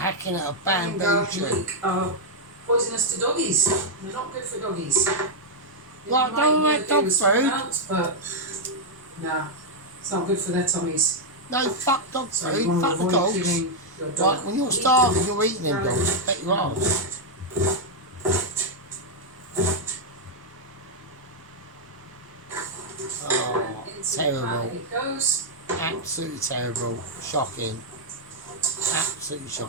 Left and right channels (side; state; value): both; normal; correlation -0.02